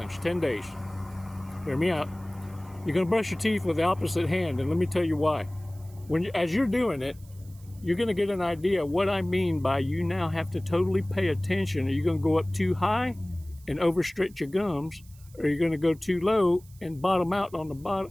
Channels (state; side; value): noise; right; hiss, 26 dB below the sound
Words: 10 days. Hear me out. You're going to brush your teeth with the opposite hand, and let me tell you why. As you're doing it, you're going to get an idea of what I mean by you now have to totally pay attention. Are you going to go up too high and overstretch your gums, or are you going to go too low and bottom out on the